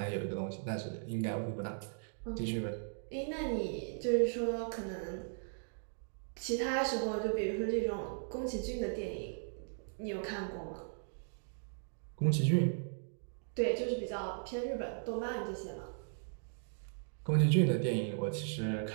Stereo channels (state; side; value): silent; left; digital silence